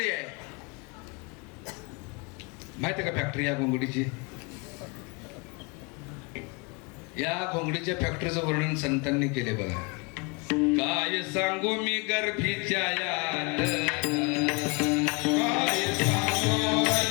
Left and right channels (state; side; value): quieter; right; 30.1 dB